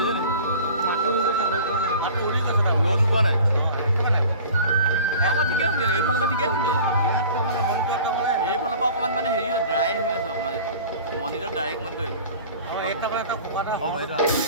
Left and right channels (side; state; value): both; inverted; correlation -0.43